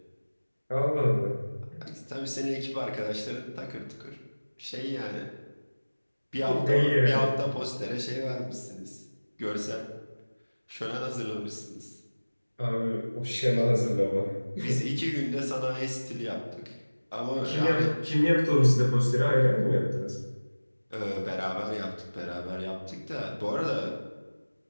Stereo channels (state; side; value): inverted; both; correlation -1.00